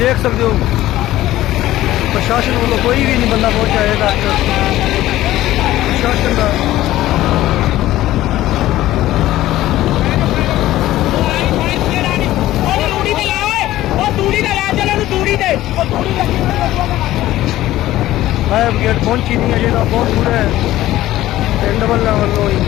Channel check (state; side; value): quieter; right; 15.1 dB